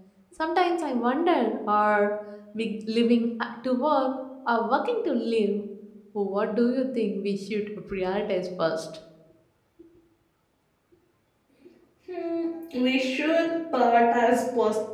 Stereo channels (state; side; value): identical; both; correlation 1.00